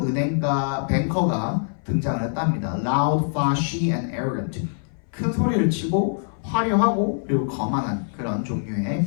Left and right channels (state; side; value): silent; right; 60 dB below the other